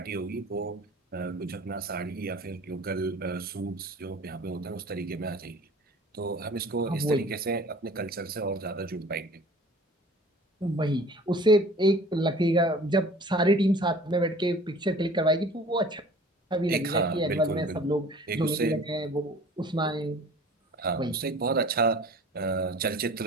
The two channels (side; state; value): both; normal; correlation 0.46